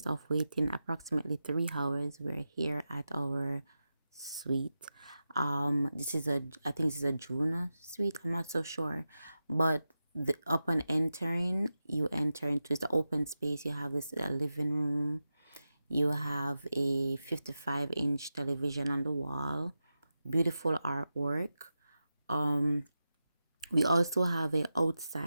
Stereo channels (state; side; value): inverted; both; correlation -0.91